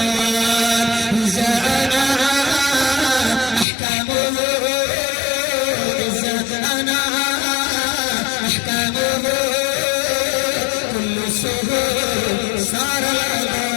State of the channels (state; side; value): drops out; right; at 3.7 s